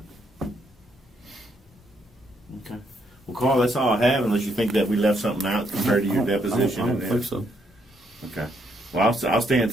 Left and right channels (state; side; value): normal; both; correlation 0.74